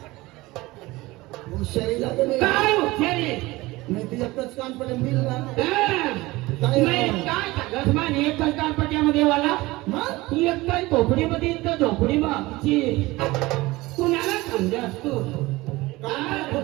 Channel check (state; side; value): quieter; left; 20.3 dB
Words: हुशारी लागेल काय हुशारी नाही ते एकच कान पडेल मिल ना काय सांगत मान एकच कानपट्यामध्ये वाला मग एकच झोपडीमध्ये तर झोपडी मागची कुणाला समजस तू कान